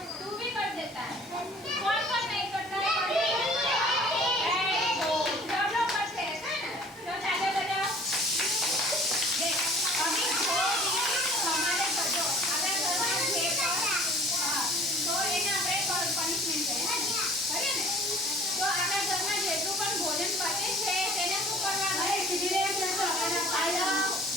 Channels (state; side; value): normal; both; correlation 0.50